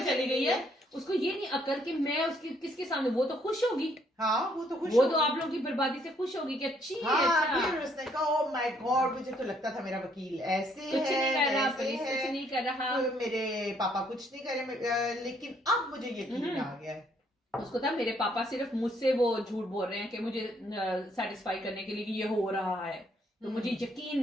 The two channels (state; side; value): normal; both; correlation 0.68